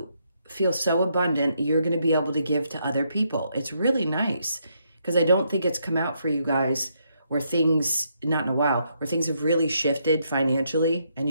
feel so abundant, you're going to be able to give to other people. It's really nice. Because I don't think it's come out for you guys where things, not in a while, where things have really shifted financially and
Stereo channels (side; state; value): both; inverted; correlation -0.76